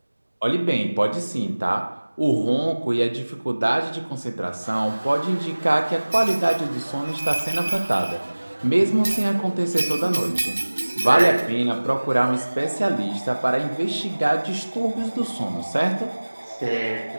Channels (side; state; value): both; inverted; correlation -1.00